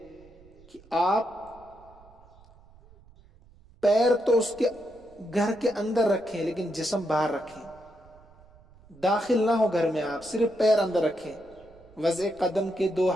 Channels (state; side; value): noise; right; rumble, 26 dB below the sound